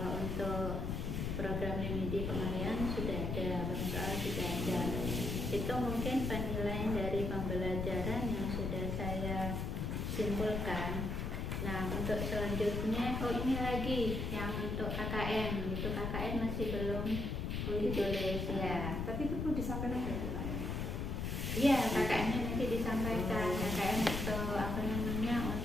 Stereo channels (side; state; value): left; noise; rumble, 2 dB below the sound